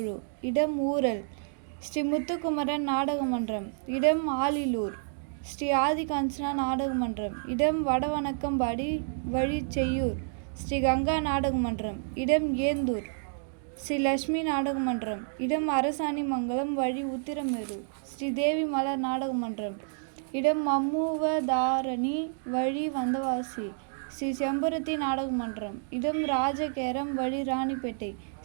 இடம் ஊரல். ஸ்ரீ முத்துக்குமரன் நாடக மன்றம், இடம் ஆலிலூர். ஸ்ரீ ஆதிகாஞ்சனா நாடக மன்றம், இடம் வடவணக்கம்பாடி, வழி செய்யூர். ஸ்ரீ கங்கா நாடக மன்றம், இடம் ஏந்தூர். ஸ்ரீ லட்சுமி நாடக மன்றம், இடம் அரசாணிமங்கலம், வழி உத்திரமேரூர். ஸ்ரீ தேவி மலர் நாடக மன்றம், இடம் மம்முவதாரணி, வழி வந்தவாசி. ஸ்ரீ செம்பருத்தி நாடக மன்றம், இடம் ராஜகேரம், வழி ராணிப்பேட்டை.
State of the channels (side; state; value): left; silent; digital silence